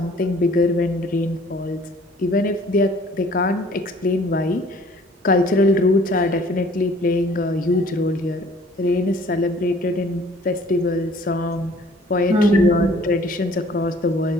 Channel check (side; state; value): both; normal; correlation 0.54